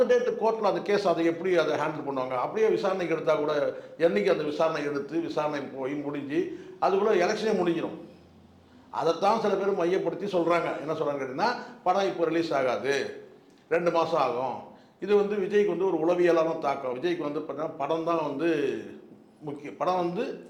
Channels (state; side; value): identical; both; correlation 1.00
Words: டேட்டு கோர்ட்டில் அந்த கேஸ் அதை எப்படி அதை ஹேண்டில் பண்ணுவாங்க, அப்படியே விசாரணைக்கு எடுத்தால் கூட என்றைக்கு அந்த விசாரணை எடுத்து விசாரணை போய் முடிஞ்சு அதுக்குள்ளே எலெக்ஷனே முடிஞ்சிடும். அதைத்தான் சில பேர் மையப்படுத்தி சொல்கிறாங்க. என்ன சொல்கிறாங்க கேட்டிங்கன்னா படம் இப்போ ரிலீஸ் ஆகாது, 2 மாதம் ஆகும், இது வந்து விஜய்க்கு வந்து ஒரு உளவியலான தாக்கம், விஜய்க்கு வந்து பார்த்தீங்கன்னா படம் தான் வந்து முக்கியம், படம் வந்து